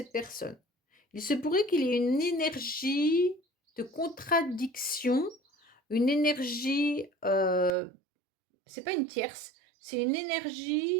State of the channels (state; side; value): drops out; left; at 7.7 s